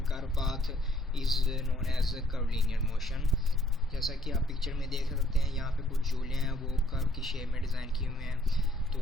curve path is known as curvilinear motion. जैसा कि आप पिक्चर में देख सकते हैं, यहाँ पे कुछ झूले हैं वो कर्व की शेप में डिज़ाइन किए हुए हैं, तो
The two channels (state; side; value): normal; both; correlation 0.65